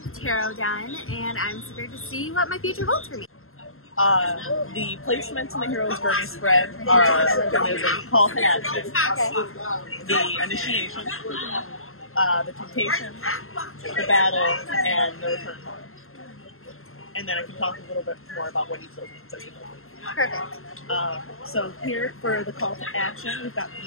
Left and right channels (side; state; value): right; late; 0.62 ms